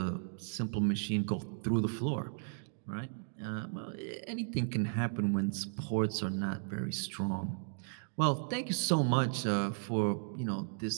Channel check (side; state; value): left; silent; digital silence